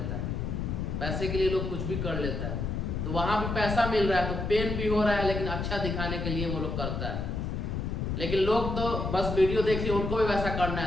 है, पैसे के लिए लोग कुछ भी कर लेता है। तो वहां भी पैसा मिल रहा है तो पेन भी हो रहा है, लेकिन अच्छा दिखाने के लिए वो लोग करता है। लेकिन लोग तो बस वीडियो देख लिया, उनको भी वैसा करना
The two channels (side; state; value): left; noise; rumble, 2 dB below the sound